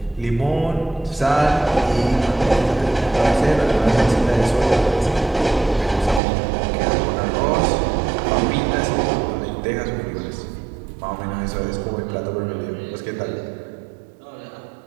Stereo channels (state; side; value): drops out; left; at 6.2 s